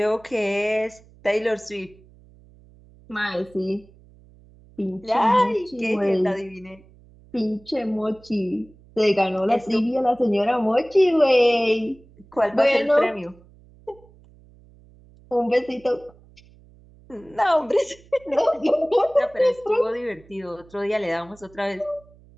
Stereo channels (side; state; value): right; noise; hum, 26 dB below the sound